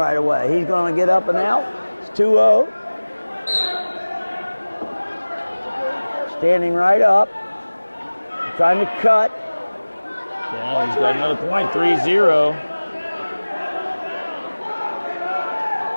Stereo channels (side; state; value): both; inverted; correlation -1.00